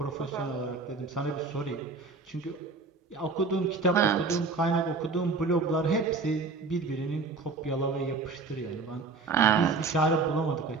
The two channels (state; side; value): quieter; left; 4.1 dB